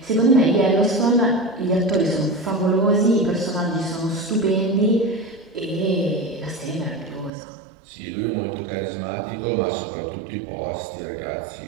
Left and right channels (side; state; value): left; drops out; at 7.3 s